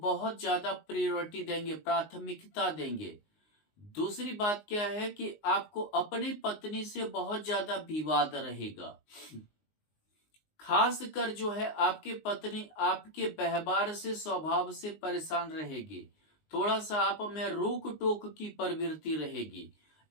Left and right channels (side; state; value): right; late; 19 ms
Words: ज्यादा प्रायोरिटी देंगे, प्राथमिकता देंगे। दूसरी बात क्या है कि आपको अपनी पत्नी से बहुत ज्यादा विवाद रहेगा। खासकर जो है आपकी पत्नी आपके व्यवहार से, स्वभाव से परेशान रहेगी। थोड़ा सा आप में रोक टोक की प्रवृत्ति रहेगी,